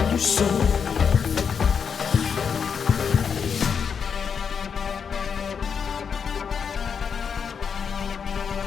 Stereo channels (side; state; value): right; quieter; 6.6 dB